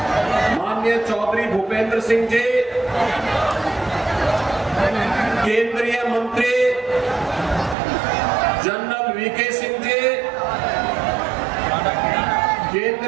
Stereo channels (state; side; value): drops out; left; at 7.8 s